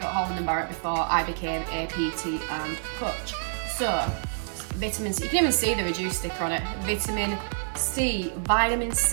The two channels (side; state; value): left; silent; 56 dB below the other